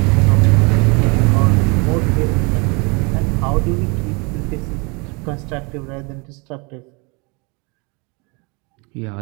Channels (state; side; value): quieter; left; 29.9 dB